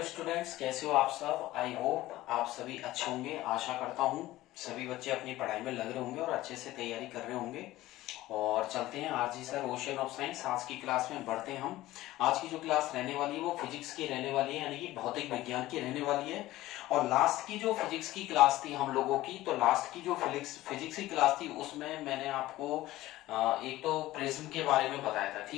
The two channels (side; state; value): right; quieter; 16.5 dB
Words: students, कैसे हो आप सब। आई होप आप सभी अच्छे होंगे। आशा करता हूँ सभी बच्चे अपनी पढ़ाई में लग रहे होंगे और अच्छे से तैयारी कर रहे होंगे। और चलते हैं आज जी सर ओशन ऑफ साइंस आज की क्लास में बढ़ते हैं हम। आज की जो क्लास रहने वाली है वो फिजिक्स की रहने वाली है, यानी कि भौतिक विज्ञान की रहने वाली है। और लास्ट की जो फिजिक्स की क्लास थी हम लोगों की, तो लास्ट की जो फिजिक्स की क्लास थी उसमें मैंने आपको एक तो प्रिज्म के बारे में बताया था,